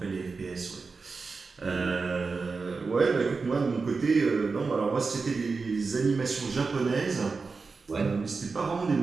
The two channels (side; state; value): left; quieter; 4.4 dB